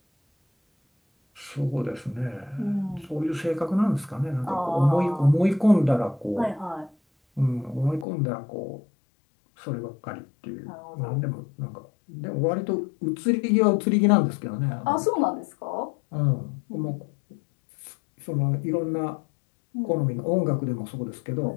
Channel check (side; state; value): right; drops out; at 8.1 s